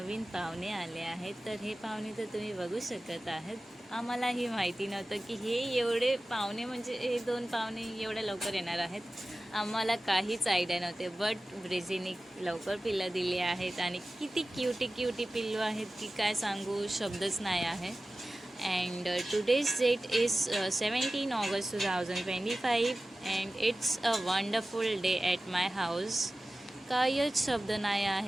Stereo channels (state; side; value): normal; both; correlation 0.96